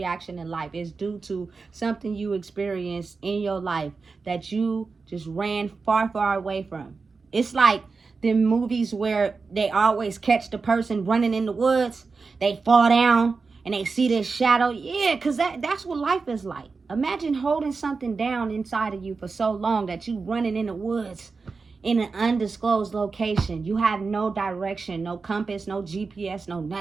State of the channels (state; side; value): quieter; left; 4.5 dB